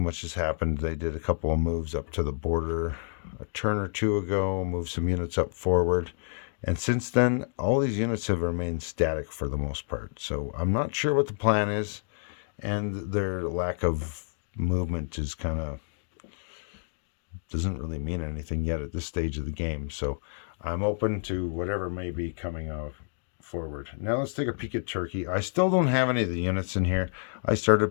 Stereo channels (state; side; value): silent; right; digital silence